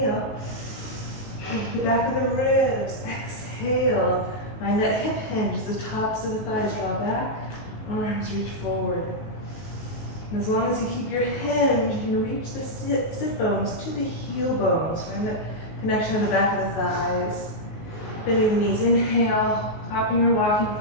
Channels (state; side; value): late; right; 19 ms